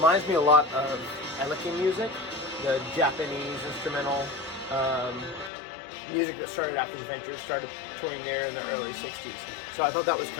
me a lot of Eleki music, the Japanese instrumental music that started after the Ventures, started touring there in the early '60s. So I thought that was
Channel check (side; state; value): right; drops out; at 5.5 s